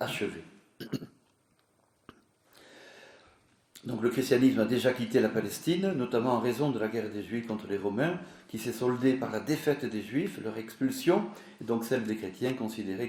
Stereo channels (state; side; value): identical; both; correlation 1.00